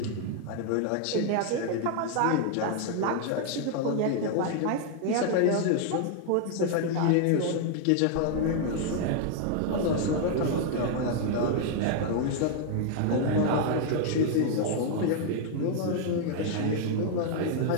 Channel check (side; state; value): both; different; correlation 0.00